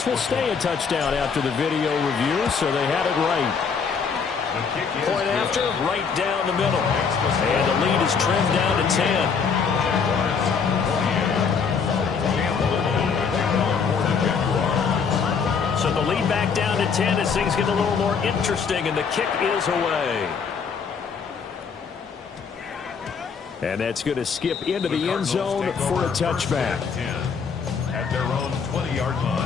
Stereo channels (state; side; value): quieter; right; 5.9 dB